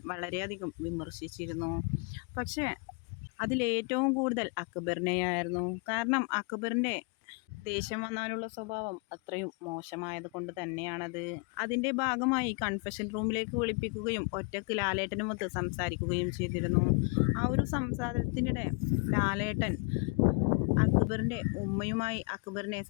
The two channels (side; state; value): right; quieter; 33.4 dB